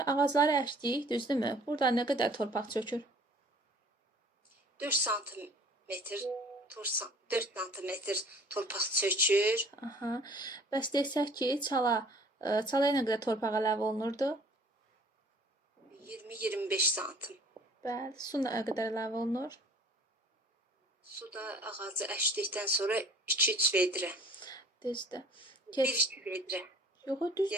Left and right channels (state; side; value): normal; both; correlation 0.52